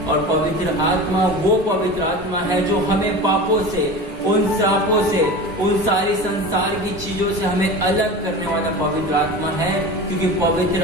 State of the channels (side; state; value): both; normal; correlation 0.32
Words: और पवित्र आत्मा वो पवित्र आत्मा है जो हमें पापों से, उन श्रापों से, उन सारी संसार की चीजों से हमें अलग करने वाला पवित्र आत्मा है, क्योंकि